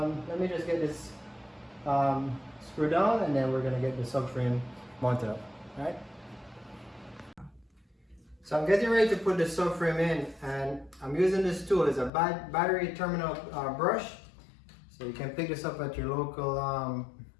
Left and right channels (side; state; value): right; drops out; at 12.1 s